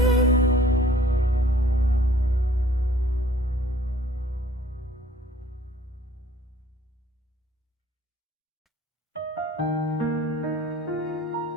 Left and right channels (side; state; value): both; normal; correlation 0.55